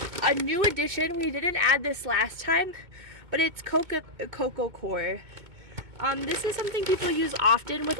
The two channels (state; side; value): late; left; 2.2 ms